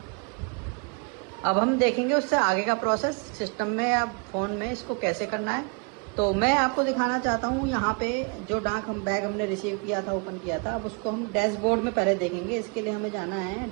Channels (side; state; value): left; quieter; 35.0 dB